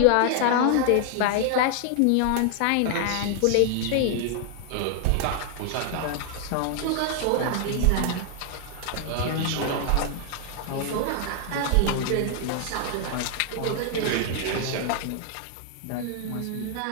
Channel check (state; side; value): different; both; correlation 0.00